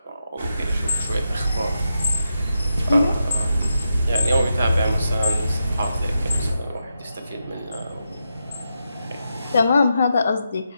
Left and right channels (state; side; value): inverted; both; correlation -0.86